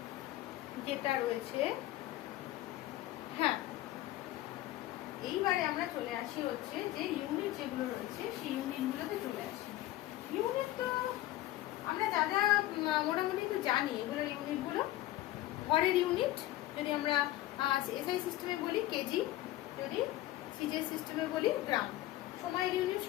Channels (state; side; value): quieter; right; 15.6 dB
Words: যেটা রয়েছে, হ্যাঁ, এইবারে আমরা চলে আসি হচ্ছে যে ইউনিট যেগুলো রয়েছে সেই ইউনিটগুলোতে চলে আসি। ইউনিট তো আমরা যা যা মোটামুটি তো জানি, এগুলোর ইউনিটগুলো। ভরের ইউনিট যদি আমরা এসআই সিস্টেমে বলি কেজি, যদি সিজিএস সিস্টেমে বলি গ্রাম। সময়ের ইউনিট